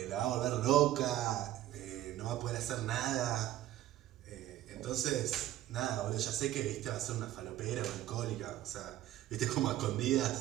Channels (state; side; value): quieter; left; 13.8 dB